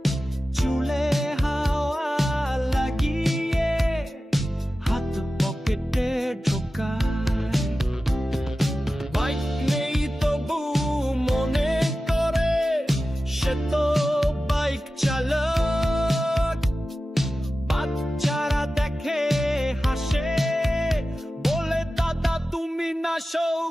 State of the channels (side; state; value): both; normal; correlation 0.94